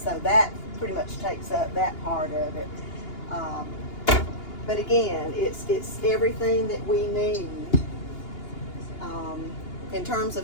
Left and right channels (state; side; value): late; right; 2.8 ms